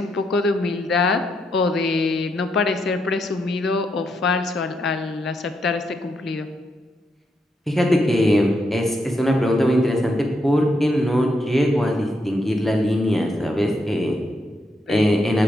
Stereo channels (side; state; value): both; normal; correlation 0.80